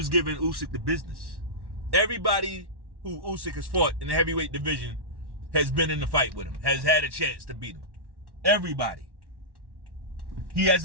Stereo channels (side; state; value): left; late; 1.1 ms